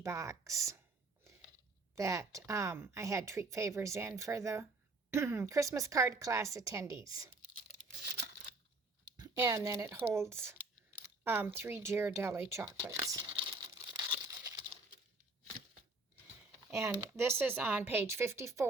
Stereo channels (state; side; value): quieter; left; 3.2 dB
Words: that I had treat favors in for the Christmas card class attendees. And then it holds 3 Ghirardelli chocolates. And this is on page